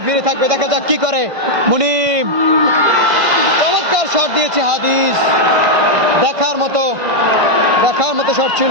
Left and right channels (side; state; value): left; late; 1.6 ms